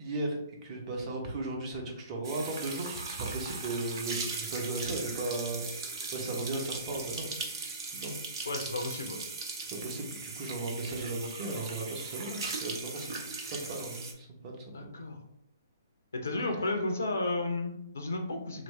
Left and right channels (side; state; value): both; inverted; correlation -0.46